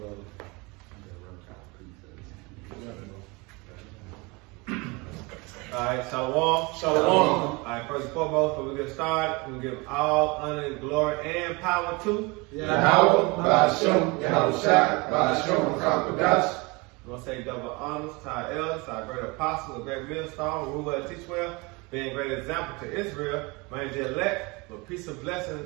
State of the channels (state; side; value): quieter; left; 26.6 dB